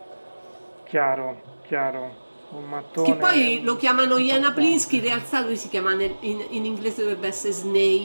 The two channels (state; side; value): inverted; both; correlation -1.00